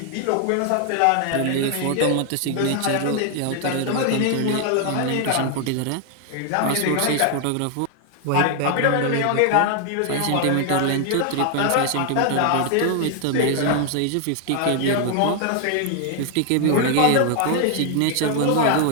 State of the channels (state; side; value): different; both; correlation 0.00